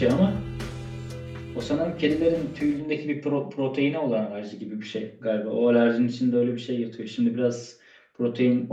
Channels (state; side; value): identical; both; correlation 1.00